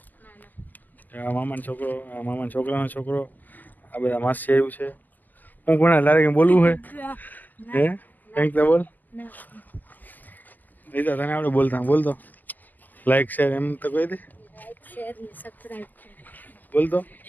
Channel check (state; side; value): late; right; 0.084 ms